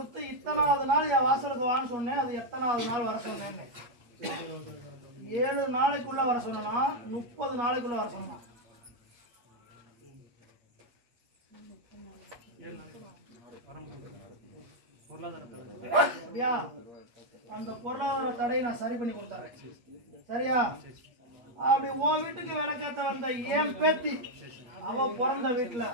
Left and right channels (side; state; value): left; late; 8.4 ms